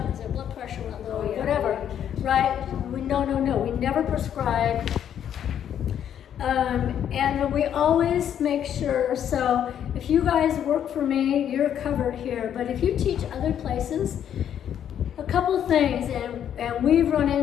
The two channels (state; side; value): quieter; right; 9.6 dB